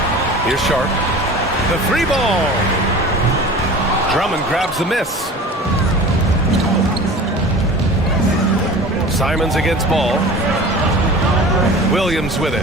Here's Sharp. The 3 ball. Drummond grabs the miss. Simons against Ball. Williams with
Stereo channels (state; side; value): normal; both; correlation 0.38